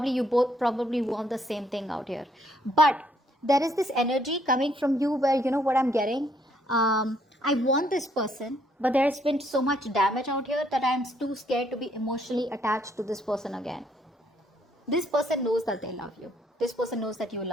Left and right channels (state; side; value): normal; both; correlation 0.69